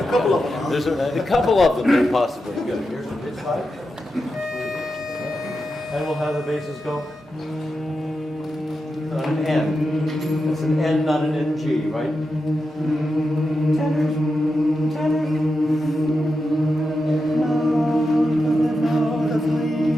couple of them. There's a couple of them, possibly. Good. Here's the pitch pipe. And we'll have the basses go on an N. It's an N, not an NG, right? Tenors, tenors.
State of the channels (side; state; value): both; normal; correlation 0.89